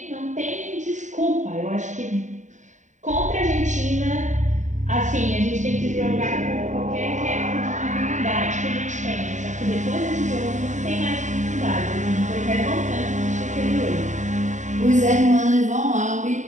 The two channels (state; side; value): late; left; 0.35 ms